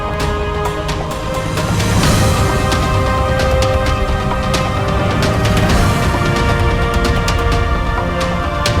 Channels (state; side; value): identical; both; correlation 1.00